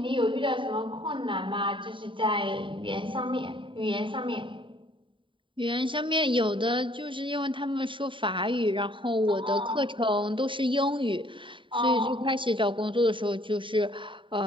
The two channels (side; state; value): left; late; 0.24 ms